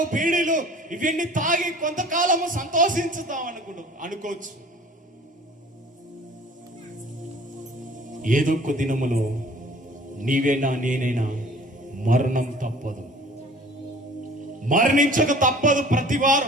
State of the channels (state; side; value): normal; both; correlation 0.48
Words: బీడీలు ఇవన్నీ తాగి కొంతకాలము సంతోషించుతాం అనుకోవచ్చు. ఏదొక్క దినములో నీవేనా నేనైనా మరణం తప్పదు, మరణించక తప్పదు.